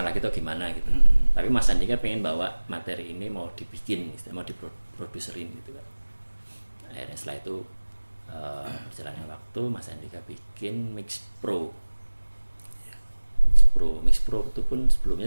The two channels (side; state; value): both; inverted; correlation -1.00